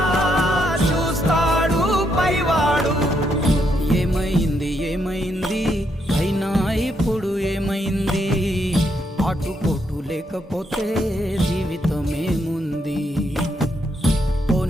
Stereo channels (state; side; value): normal; both; correlation 0.77